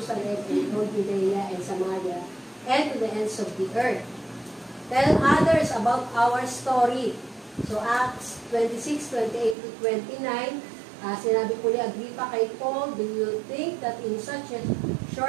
in all Judea and Samaria, and to the ends of the earth. Tell others about our story. So Acts 26:28 to 29, sinabi po ni Agrippa kay Paul, do you think that in such a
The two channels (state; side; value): drops out; left; at 9.6 s